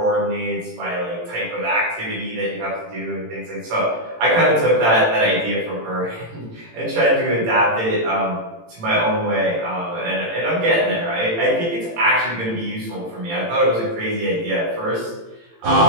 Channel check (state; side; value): late; left; 18 ms